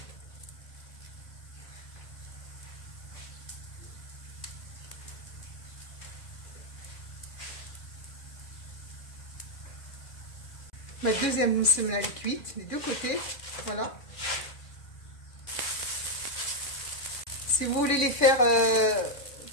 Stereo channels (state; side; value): late; right; 2.3 ms